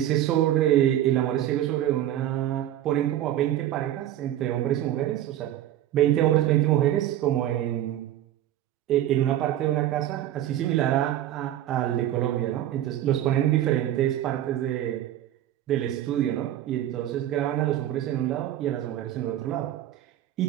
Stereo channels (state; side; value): quieter; left; 12.5 dB